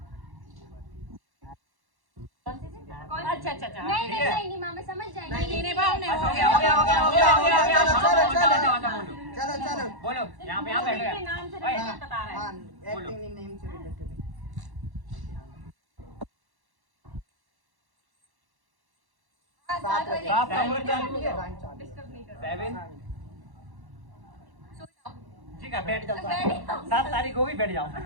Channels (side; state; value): left; late; 1.1 ms